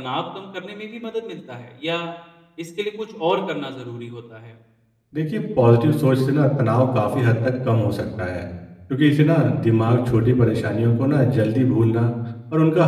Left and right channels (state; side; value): identical; both; correlation 1.00